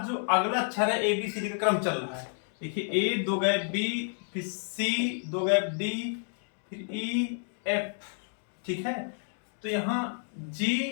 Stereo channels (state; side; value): silent; right; 58 dB below the other